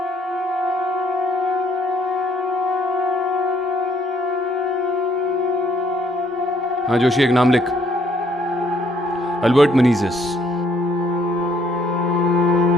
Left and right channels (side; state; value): both; normal; correlation 0.66